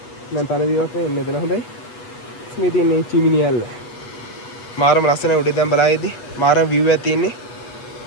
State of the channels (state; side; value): late; right; 8.2 ms